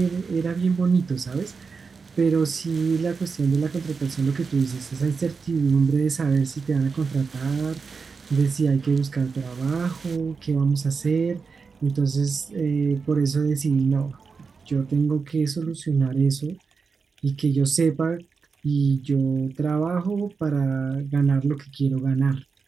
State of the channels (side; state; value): left; quieter; 5.1 dB